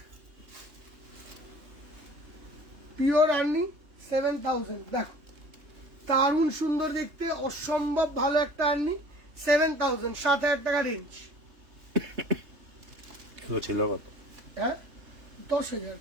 পিওর আর্নি 7,000। দেখো দারুণ সুন্দর দেখতে, অসম্ভব ভালো একটা আর্নি, 7,000, 7,000 টাকা রেঞ্জ। এগুলো ছিল কত? হ্যাঁ 10,000,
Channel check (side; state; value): left; late; 3.3 ms